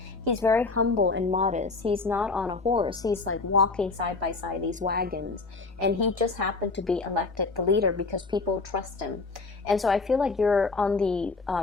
He's very humble and modest. He's not on a horse. He's like walking side by side these wagons, and he just happened to be elected the leader because people trust him. And so I feel like you're on the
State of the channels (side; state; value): right; quieter; 3.9 dB